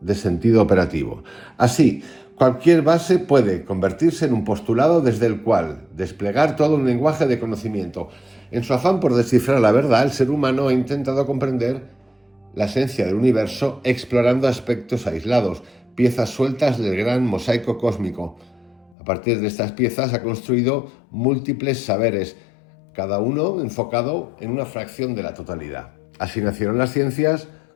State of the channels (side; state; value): right; drops out; at 18.9 s